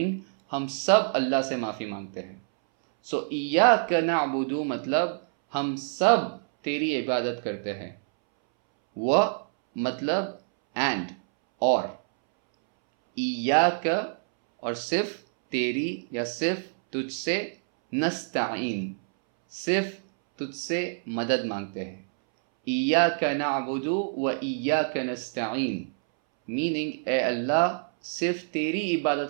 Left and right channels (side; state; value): left; silent; 60 dB below the other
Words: ہم سب اللہ سے معافی مانگتے ہیں. سو ایاک نعبد مطلب ہم سب تیری عبادت کرتے ہیں. و مطلب اینڈ اور، ایاک اور صرف تیری یا صرف تجھ سے، نستعین صرف تجھ سے مدد مانگتے ہیں. ایاک نعبد و ایاک نستعین میننگ اے اللہ صرف تیری